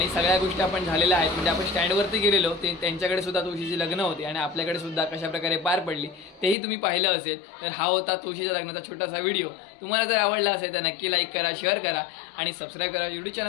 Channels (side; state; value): right; drops out; at 6.6 s